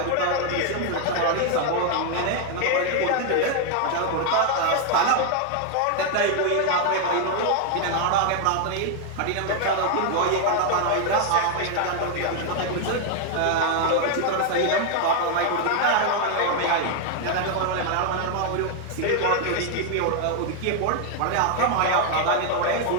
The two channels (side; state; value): both; different; correlation 0.00